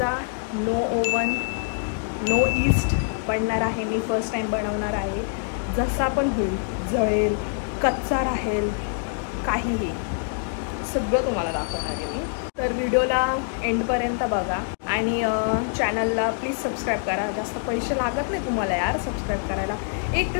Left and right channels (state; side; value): silent; right; 62 dB below the other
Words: no oven no yeast बनणार आहे। मी फर्स्ट टाइम बनवणार आहे। जसा पण होईल, जळेल, कच्चा राहील, काहीही सगळं तुम्हाला दाखवणार आहे मी। तर व्हिडिओला एंडपर्यंत बघा आणि चॅनलला प्लीज सबस्क्राईब करा। जास्त पैसे लागत नाही तुम्हाला यार सबस्क्राईब करायला। एक